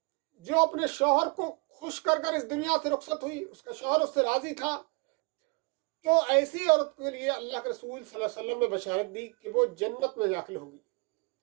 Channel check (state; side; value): quieter; left; 31.6 dB